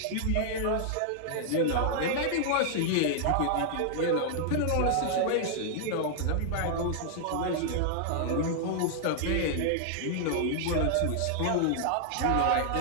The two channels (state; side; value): different; both; correlation -0.01